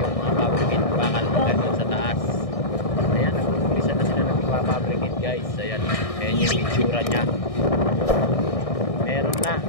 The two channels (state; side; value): late; right; 1.6 ms